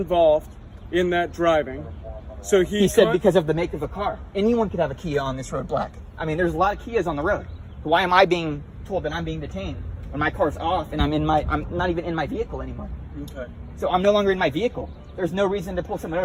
in that driving. So he said because of the make of a car. Anyone could have a Kia on this road black. I mean, there's a lot of Kias on the road. Why am I being told that I'm being detained when my car's off and I'm not even in my vehicle anymore? Okay. So I'm no longer in my vehicle. There's no reason to pull someone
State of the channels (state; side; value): identical; both; correlation 1.00